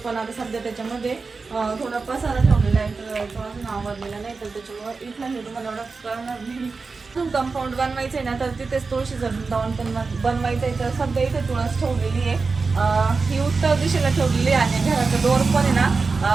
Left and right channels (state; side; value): quieter; left; 4.4 dB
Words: आता सध्या त्याच्यामध्ये थोडा पसारा ठेवलेला आहे तर तो अजून आवडलेला नाही, तर त्याच्यामुळे इथलं हे तुम्हाला एवढं कळणार नाही. कंपाऊंड बनवायचं आहे ना तर तिथेच तुळशीचं वृंदावन पण बनवायचं आहे. तर सध्या इथे तुळस ठेवलेली आहे. ही उत्तर दिशेला ठेवलेली आहे. घराचा डोर पण आहे